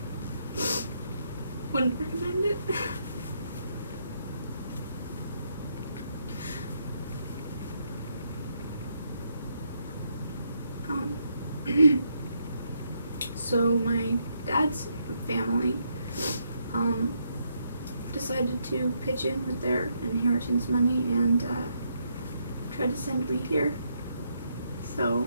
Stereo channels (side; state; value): both; inverted; correlation -0.77